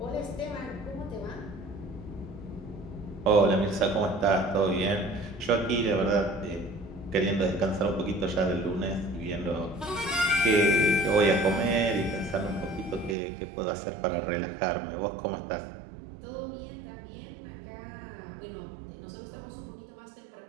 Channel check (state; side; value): drops out; left; at 13.2 s